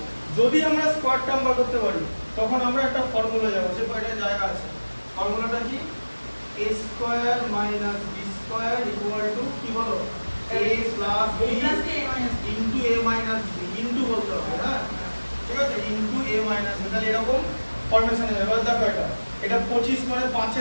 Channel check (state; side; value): inverted; both; correlation -1.00